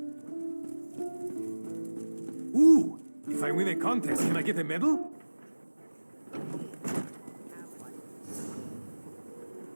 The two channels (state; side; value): inverted; both; correlation -1.00